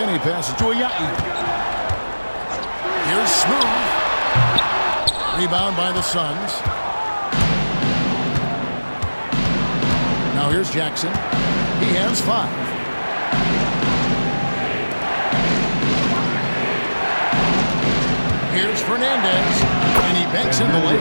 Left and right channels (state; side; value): inverted; both; correlation -1.00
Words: passes to Ayayi. Here's Smooth. Rebound by the Suns. Now here's Jackson. He has 5. Here's Fernandez, and he banks in the